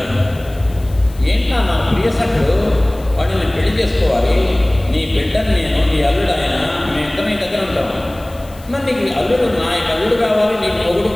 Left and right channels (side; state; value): left; noise; hiss, 24 dB below the sound